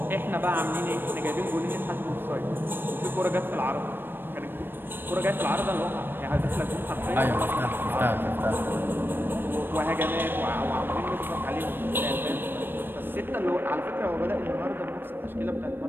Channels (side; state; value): left; late; 0.097 ms